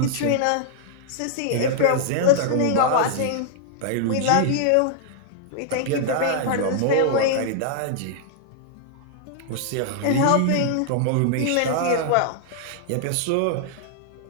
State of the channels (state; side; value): different; both; correlation -0.01